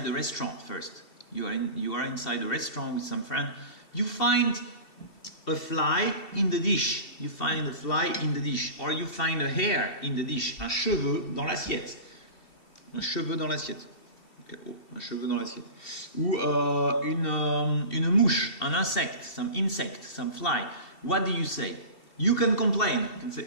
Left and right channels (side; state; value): right; late; 2.7 ms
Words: the restaurant first. You are inside a restaurant with some friend. You find a fly in the dish. You find a fly in the dish. Or you find a hair in the dish. Un cheveu dans l'assiette. Un cheveu dans l'assiette. Oh, un cheveu dans l'assiette. Ou une mouche, un insecte, some insect, some fly. What do you say? You can complain. You can say,